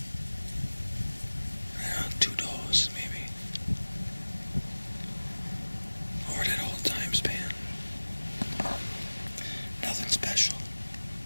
I don't know, 2 does maybe. Over that whole time span. Nothing special.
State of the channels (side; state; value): both; inverted; correlation -1.00